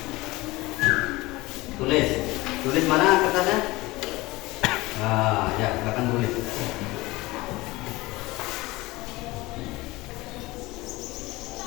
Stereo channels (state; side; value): quieter; right; 20.8 dB